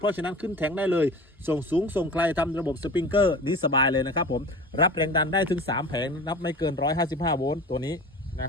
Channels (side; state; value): both; normal; correlation 0.36